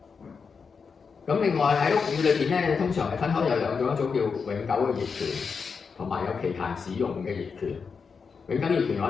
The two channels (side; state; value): right; quieter; 5.5 dB